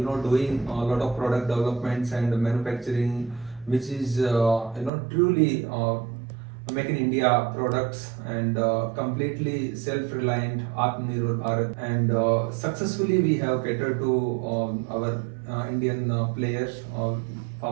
a lot of product developments and manufacturing, which is truly make in India products and completely self-reliant Atmanirbhar Bharat. And successfully we have catered to our Indian players,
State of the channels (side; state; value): left; drops out; at 4.9 s